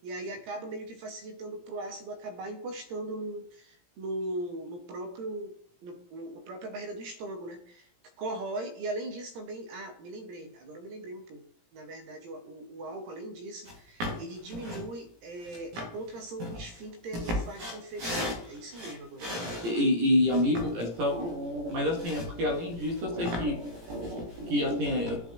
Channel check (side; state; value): left; late; 17 ms